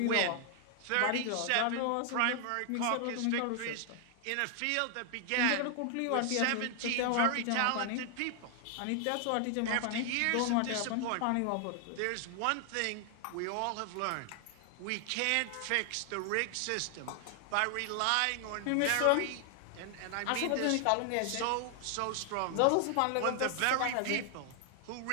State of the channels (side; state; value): both; different; correlation 0.00